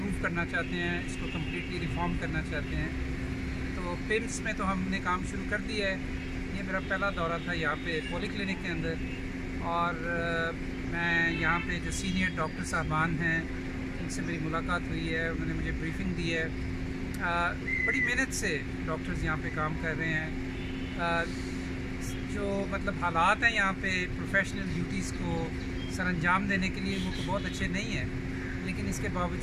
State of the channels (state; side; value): identical; both; correlation 1.00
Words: करना चाहते हैं, इसको कम्प्लीटली रिफॉर्म करना चाहते हैं। तो पिम्स में तो हमने काम शुरू कर दिया है। ये मेरा पहला दौरा था यहाँ पे पॉली क्लिनिक के अंदर और मैं यहाँ पे जो सीनियर डॉक्टर साहबान हैं उनसे मेरी मुलाकात हुई है, उन्होंने मुझे ब्रीफिंग दी है। बड़ी मेहनत से डॉक्टर्स यहाँ पे काम कर रहे हैं। जो मतलब हालात हैं यहाँ पे प्रोफेशनल ड्यूटीज़ को सरअंजाम देने के लिए वो तो बहुत अच्छे नहीं हैं, लेकिन इसके